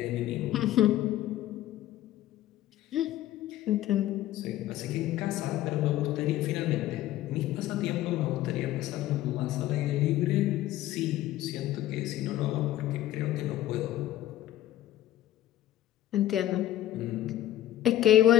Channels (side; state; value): right; quieter; 13.5 dB